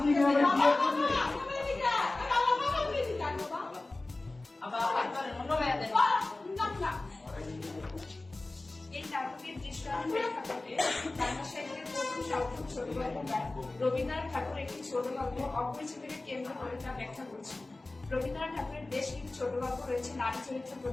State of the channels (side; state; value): right; quieter; 3.0 dB